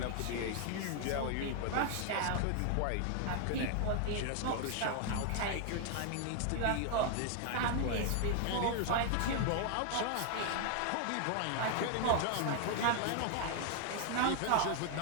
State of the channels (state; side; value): different; both; correlation 0.00